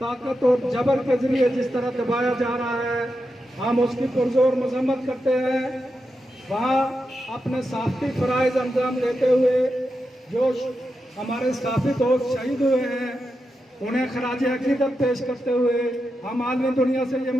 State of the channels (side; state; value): both; normal; correlation 0.88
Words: اور جبر کے ذریعے جس طرح دبایا جا رہا ہے, ہم اس کی پرزور مذمت کرتے ہیں. وہاں اپنے صحافتی فرائض انجام دیتے ہوئے جو ہمارے صحافی دوست شہید ہوئے ہیں انہیں خراج عقیدت پیش کرتے ہوئے ہم عالمی دنیا سے یہ